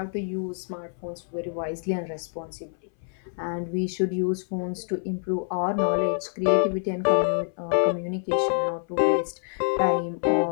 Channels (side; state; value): right; silent; 60 dB below the other